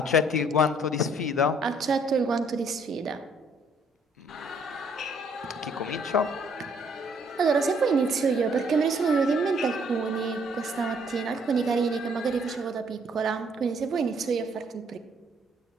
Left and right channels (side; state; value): both; normal; correlation 0.65